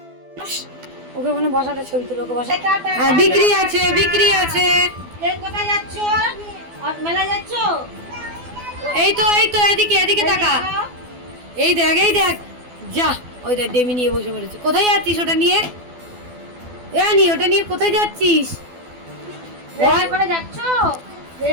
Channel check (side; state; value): left; late; 12 ms